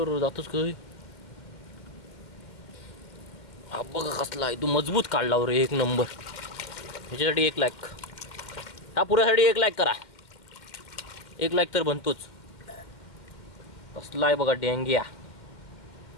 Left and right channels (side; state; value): right; late; 2.2 ms